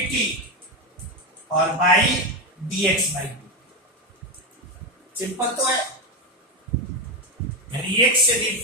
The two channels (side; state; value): both; normal; correlation 0.11